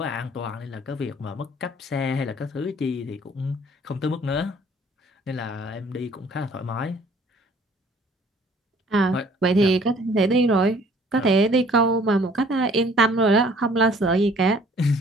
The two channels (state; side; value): normal; both; correlation 0.56